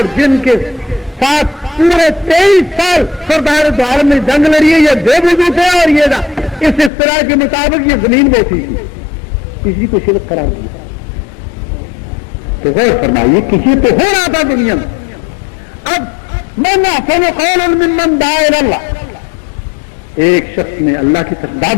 جن کے ساتھ پورے 23 سال سردار دو عالم نے جنگ لڑی ہے, یہ بے وضو تھے اور یہ اس اصطلاح کے مطابق یہ زمین بوسی تھی, کسی کو شرک قرار دیا. تو غور فرمائیے کسی تو ہو رہا تھا دنیا میں. اب من احسن قولا ممن دعا الی اللہ, ایک شخص نے اللہ کی طرف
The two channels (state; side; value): drops out; right; at 6.9 s